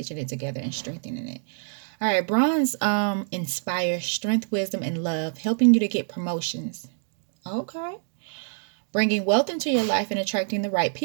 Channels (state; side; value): silent; left; digital silence